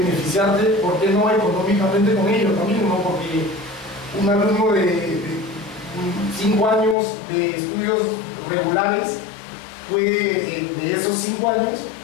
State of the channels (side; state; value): right; drops out; at 7.0 s